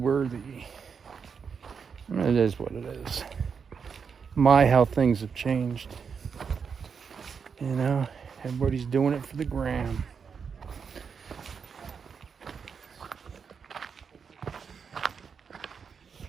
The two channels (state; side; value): quieter; left; 6.2 dB